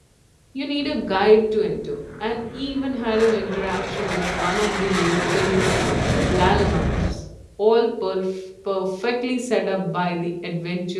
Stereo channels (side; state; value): both; identical; correlation 1.00